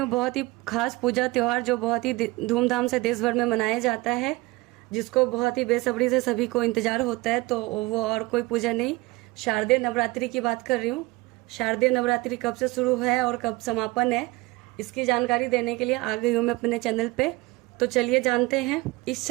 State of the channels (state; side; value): quieter; left; 21.6 dB